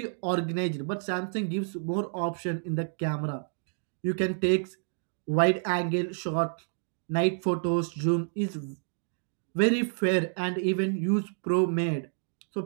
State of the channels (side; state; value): left; silent; digital silence